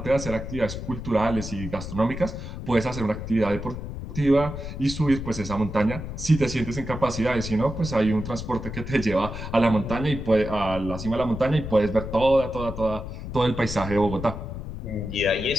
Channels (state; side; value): noise; left; rumble, 8 dB below the sound